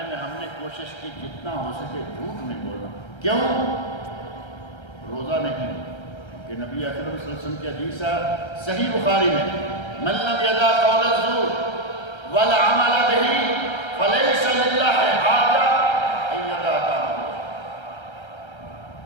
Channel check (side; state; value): right; late; 1.3 ms